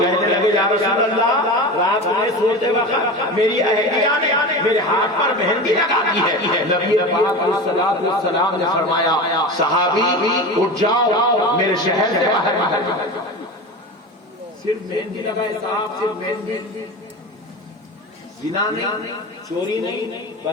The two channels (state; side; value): normal; both; correlation 0.28